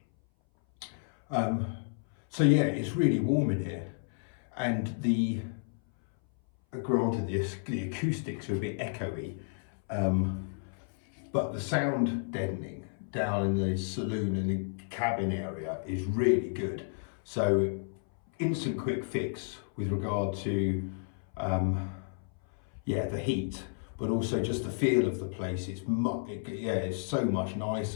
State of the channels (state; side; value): silent; right; 57 dB below the other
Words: So yeah, it's really warm in here, and granted the acoustics are a bit echoey, but the sound deadening down in the saloon and the cabin area is really good. So instant quick fix with regard to the heat, but also just the feel of the place. It's so much